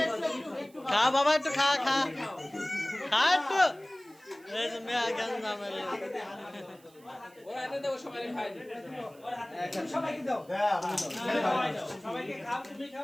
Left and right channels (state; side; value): noise; right; hiss, 28 dB below the sound